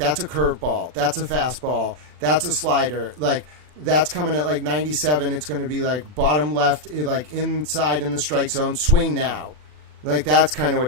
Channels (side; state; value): left; late; 40 ms